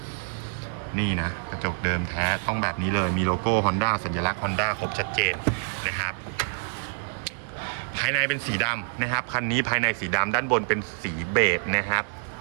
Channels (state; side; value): silent; left; digital silence